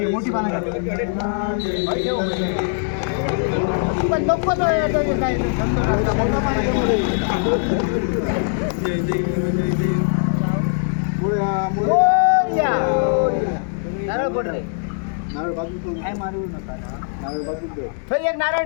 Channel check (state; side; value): silent; right; 64 dB below the other